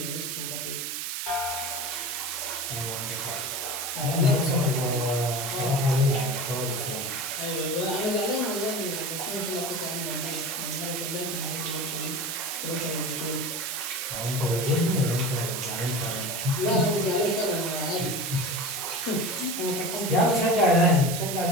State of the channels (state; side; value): noise; right; hiss, 3 dB below the sound